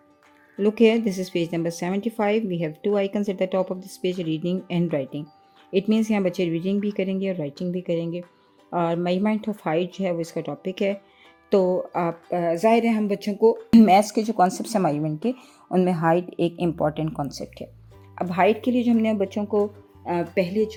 Look here, this is page number 75. We have two icons at the top of this page, reading and writing. It means यहाँ बच्चे reading भी करेंगे और writing भी करेंगे और measurement of height जो है वो इसका टॉपिक है। तो आप ज़ाहिर है हम बच्चों को मैथ्स के जो कॉन्सेप्ट हैं मेजरमेंट के, उनमें हाइट एक इम्पॉर्टेंट कॉन्सेप्ट है। अब हाइट के लिए जो हमने बच्चों को पहले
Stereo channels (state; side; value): identical; both; correlation 1.00